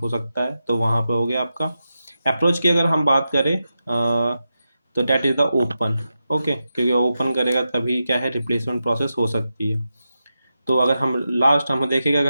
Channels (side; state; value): both; inverted; correlation -0.89